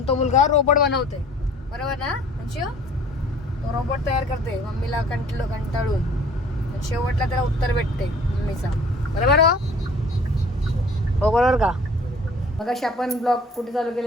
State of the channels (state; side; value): normal; both; correlation 0.51